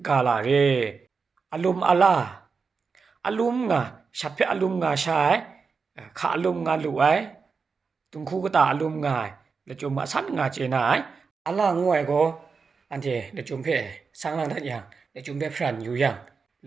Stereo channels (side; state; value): left; quieter; 5.1 dB